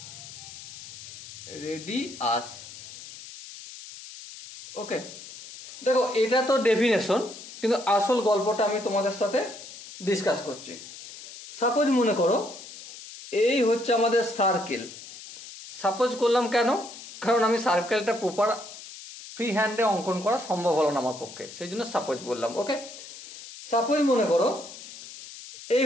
ওকে, দেখো এটা তো ডেফিনেশন, কিন্তু আসল গল্পটা আমি তোমাদের সাথে ডিসকাস করছি। সাপোজ মনে করো এই হচ্ছে আমাদের সার্কেল। সাপোজ করলাম কেন? কারণ আমি সার্কেলটা প্রপার ফ্রি হ্যান্ডে অঙ্কন করা সম্ভব হলো না আমার পক্ষে, সেই জন্য সাপোজ বললাম। ওকে, সাপোজ মনে করো এই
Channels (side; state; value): left; noise; hiss, 14 dB below the sound